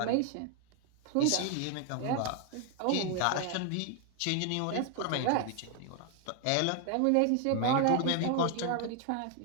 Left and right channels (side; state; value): both; different; correlation 0.00